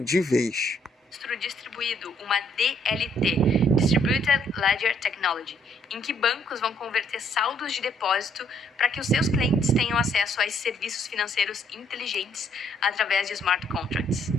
vez. distribuído, uma DLT, Distributed Ledger Technology, em que bancos vão converter saldos de depósito para que os seus clientes tenham acesso a esses serviços financeiros inteligentes através de smart contracts.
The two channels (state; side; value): normal; both; correlation 0.68